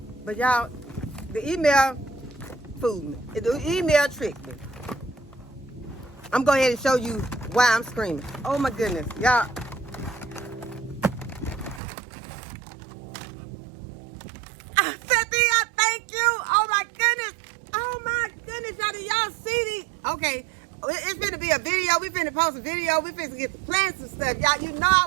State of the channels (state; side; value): drops out; left; at 11.8 s